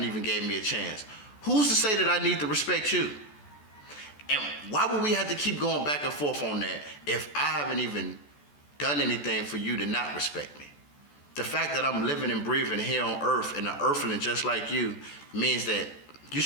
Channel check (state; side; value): late; right; 14 ms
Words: even gave me a chance, who's to say that I need to respect you? And why would we have to keep going back and forth on that if I haven't even done anything for you to not respect me? The fact that I'm living and breathing here on earth and an earthling just like you means that you